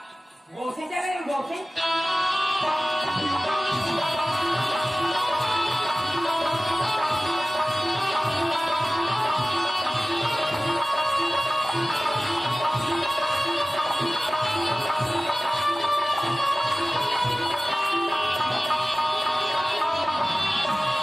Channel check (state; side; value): normal; both; correlation 0.97